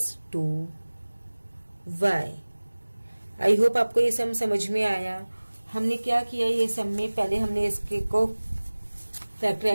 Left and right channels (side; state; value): both; inverted; correlation -1.00